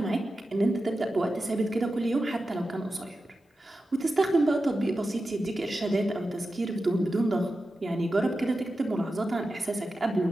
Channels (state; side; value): normal; both; correlation 0.92